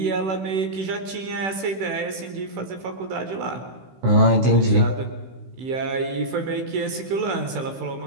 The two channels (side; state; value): left; late; 16 ms